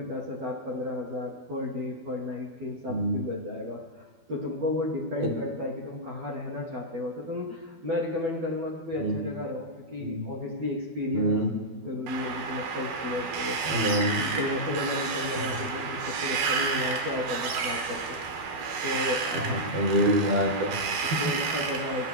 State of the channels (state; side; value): late; left; 12 ms